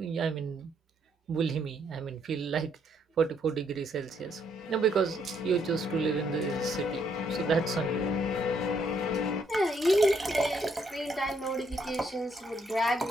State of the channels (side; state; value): both; normal; correlation 0.72